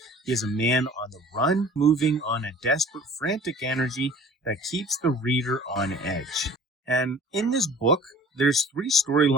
He is a man on the run, moving on a desperate, frantic energy that keeps the reader on edge. And in this book, there's 3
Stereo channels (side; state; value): both; normal; correlation 0.47